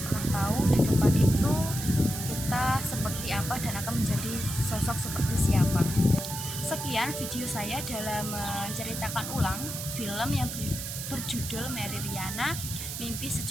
pernah tahu di depan itu kita seperti apa dan akan menjadi sosok seperti siapa. Sekian video saya dalam menceritakan ulang film yang berjudul Mary Riana Mimpi $1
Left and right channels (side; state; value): right; noise; hiss, 6 dB below the sound